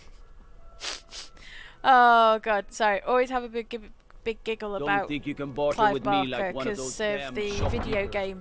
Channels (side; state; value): both; identical; correlation 1.00